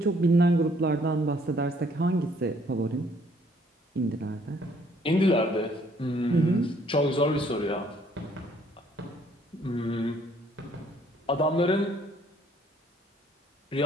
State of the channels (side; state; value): both; normal; correlation 0.63